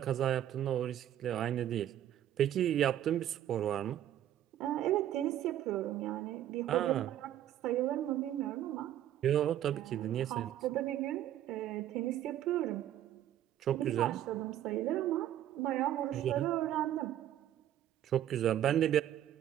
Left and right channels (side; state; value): left; quieter; 11.7 dB